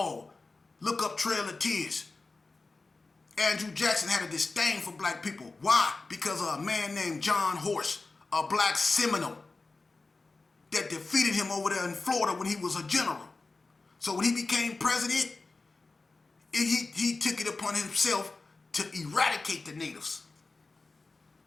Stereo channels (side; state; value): right; quieter; 3.6 dB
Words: Look up Trail of Tears. Andrew Jackson had a disdain for black people. Why? Because of a man named John Horse, a black Seminole, that defeated him over there in Florida when he was a general. So when he became president, he took it upon himself to eradicate the natives.